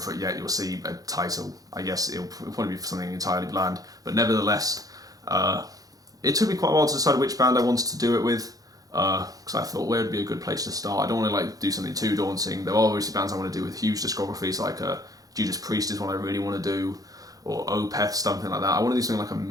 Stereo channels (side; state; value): left; late; 0.17 ms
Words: it yet. You'll see a title. I guess it'll probably be something entirely bland, but nevertheless, it took me quite a while to decide which band I wanted to do it with. Because I thought where would be a good place to start. I don't want to do something too daunting. There are obviously bands I want to do with huge discographies, like Judas Priest is one I really want to do, or Opeth, something like that. I want to do something like a